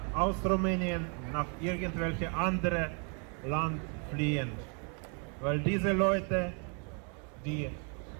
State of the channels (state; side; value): quieter; left; 37.9 dB